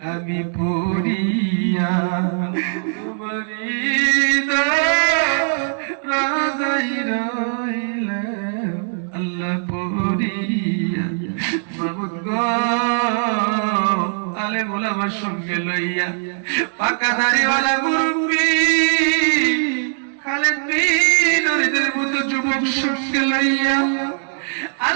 আমি পড়িয়া তোমারি দরজাই রইলাম আল্লাহ পড়িয়া মাবুদ গো আলেম ওলামার সঙ্গে লইয়া পাকা দাড়িওয়ালা মুরব্বি খালেদ বিন ওরিদের মতো যুবক সঙ্গে লইয়া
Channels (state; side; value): silent; left; digital silence